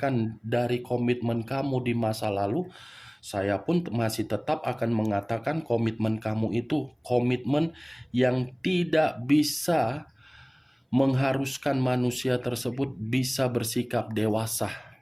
dari komitmen kamu di masa lalu, saya pun masih tetap akan mengatakan komitmen kamu itu komitmen yang tidak bisa mengharuskan manusia tersebut bisa bersikap dewasa.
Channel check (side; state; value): both; identical; correlation 1.00